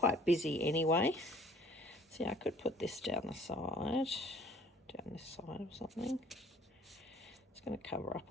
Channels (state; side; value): normal; both; correlation 0.56